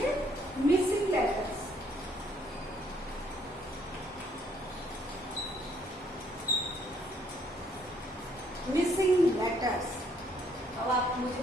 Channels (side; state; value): both; normal; correlation 0.66